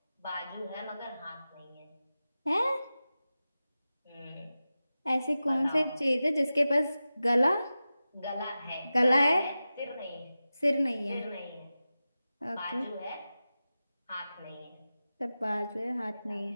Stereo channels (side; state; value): both; inverted; correlation -0.94